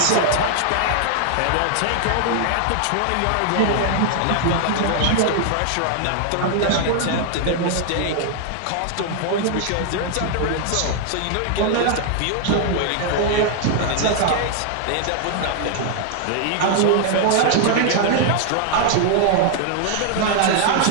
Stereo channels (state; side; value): different; both; correlation 0.00